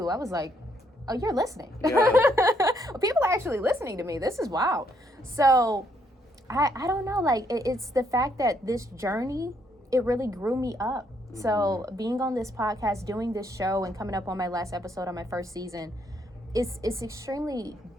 I was like, oh, you're listening. People are actually listening to me. This is wild. So I don't know, like it's the fact that this journey, it really grew me up. So being on this podcast, doing this show, and coming up on my last episode on my first season, it's extremely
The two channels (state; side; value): normal; both; correlation 0.72